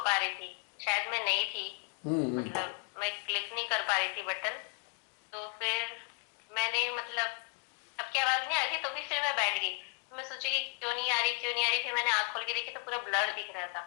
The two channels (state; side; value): quieter; right; 34.7 dB